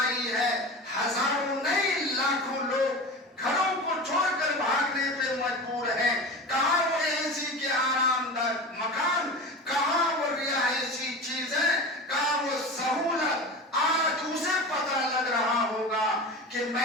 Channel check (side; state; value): both; normal; correlation 0.30